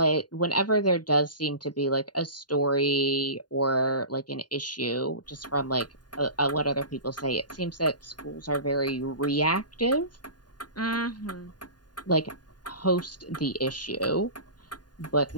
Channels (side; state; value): right; late; 0.70 ms